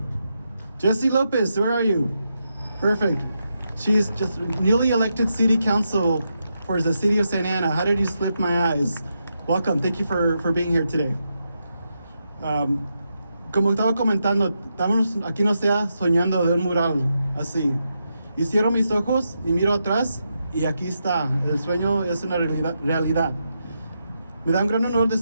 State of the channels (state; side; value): inverted; both; correlation -0.84